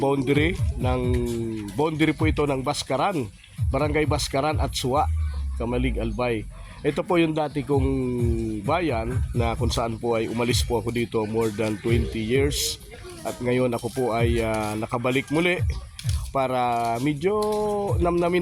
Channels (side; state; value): both; identical; correlation 1.00